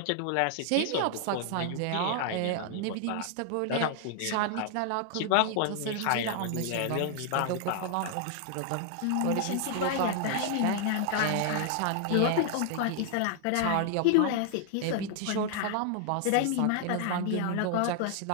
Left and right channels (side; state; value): both; different; correlation 0.00